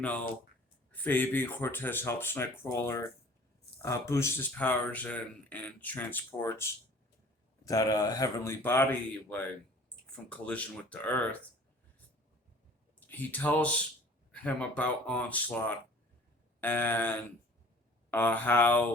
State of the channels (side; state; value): both; normal; correlation 0.49